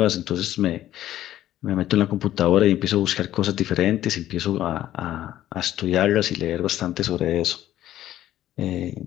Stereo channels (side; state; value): right; quieter; 13.0 dB